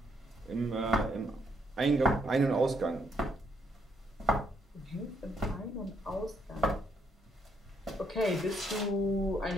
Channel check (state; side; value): normal; both; correlation 0.74